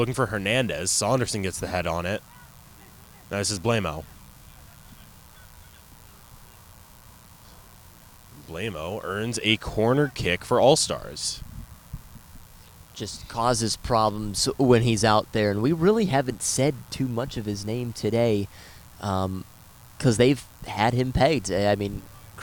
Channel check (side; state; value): both; identical; correlation 1.00